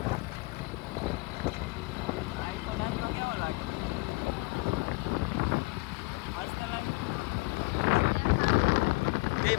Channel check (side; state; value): right; quieter; 25.4 dB